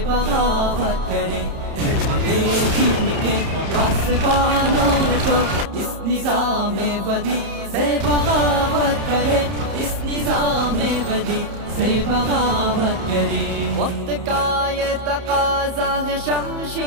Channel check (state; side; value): late; left; 31 ms